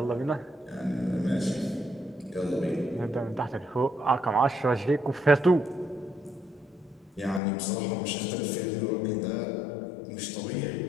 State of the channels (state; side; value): drops out; right; at 7.4 s